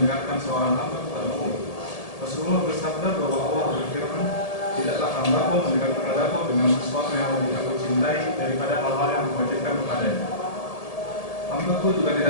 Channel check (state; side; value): late; right; 1.8 ms